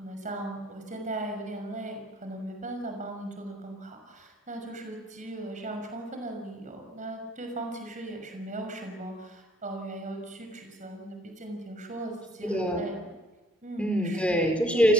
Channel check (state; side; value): normal; both; correlation 0.61